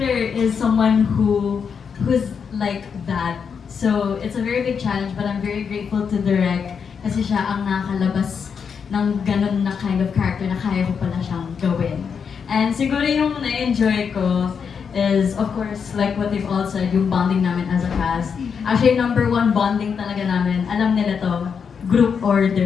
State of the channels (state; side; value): quieter; right; 6.5 dB